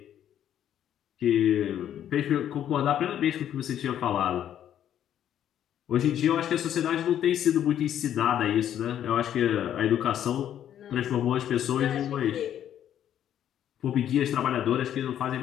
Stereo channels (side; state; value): right; quieter; 10.5 dB